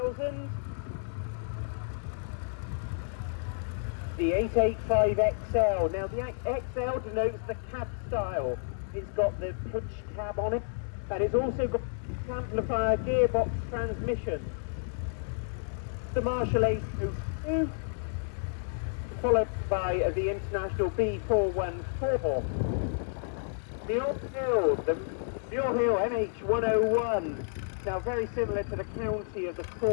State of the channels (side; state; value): right; silent; digital silence